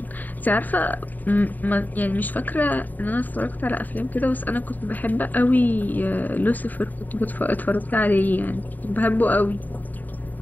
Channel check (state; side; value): late; right; 0.085 ms